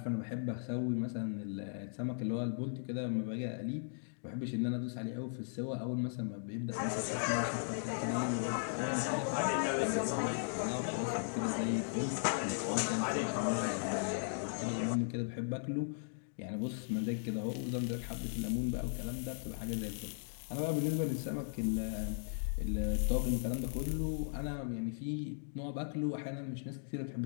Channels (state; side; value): silent; right; digital silence